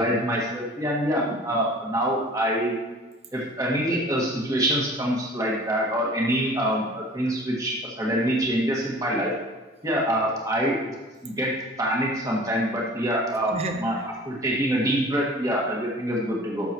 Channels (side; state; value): both; normal; correlation 0.45